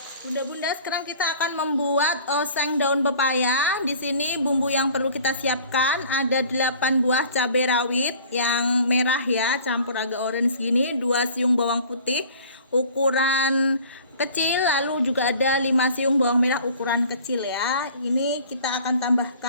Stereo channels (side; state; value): both; inverted; correlation -0.47